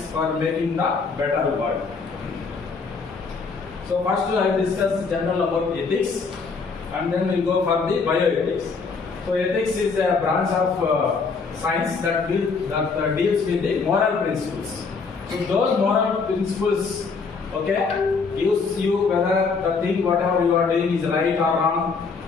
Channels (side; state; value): right; quieter; 4.8 dB